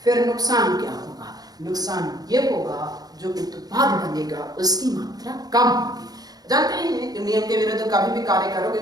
फिर नुकसान क्या होगा? नुकसान ये होगा जो उत्पाद बनेगा उसकी मात्रा कम होगी। जानते हैं कि नियम के विरुद्ध कभी भी कार्य करोगे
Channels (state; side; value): late; left; 0.19 ms